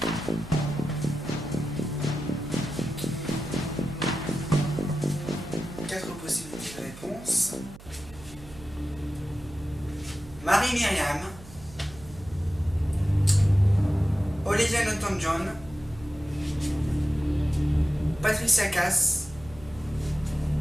Quatre possibilités de réponse. Marie-Myriam, Olivia Newton-John, Patricia Cass,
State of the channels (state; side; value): noise; right; hum, 19 dB below the sound